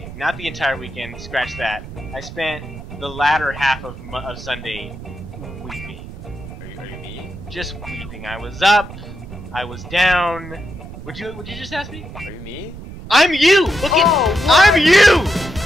Not the entire weekend, scratch that. I spent the latter half of Sunday weeping. Are you me? Just weeping. I was up, I was down. Would you just ask me? Are you me? I'm you! Look at Oh, what? I'm you!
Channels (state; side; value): noise; right; rumble, 13 dB below the sound